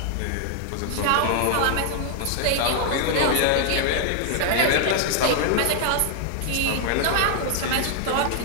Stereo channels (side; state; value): both; different; correlation 0.00